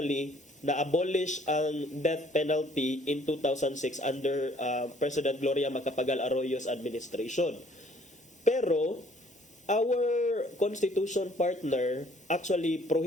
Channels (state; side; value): normal; both; correlation 0.59